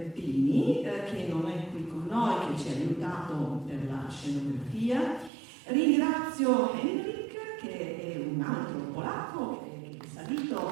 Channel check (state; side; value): drops out; left; at 5.3 s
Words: Pini, che non è qui con noi, che ci ha aiutato per la scenografia. Ringrazio Henrik, che è un altro polacco, che è salito